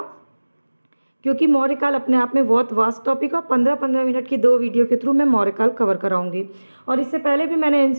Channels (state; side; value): inverted; both; correlation -1.00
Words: क्योंकि मौर्य काल अपने आप में बहुत वास्ट टॉपिक है। 15-15 मिनट की 2 वीडियो के थ्रू मैं मौर्य काल कवर कराऊंगी। और इससे पहले भी मैंने